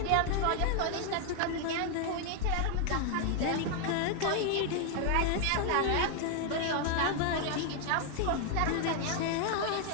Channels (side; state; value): both; different; correlation 0.00